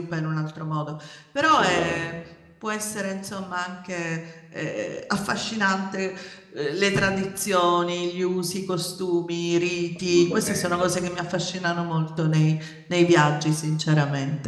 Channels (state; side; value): identical; both; correlation 1.00